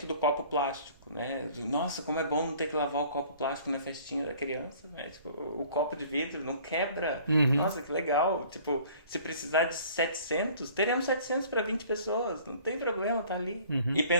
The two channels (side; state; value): both; inverted; correlation -0.52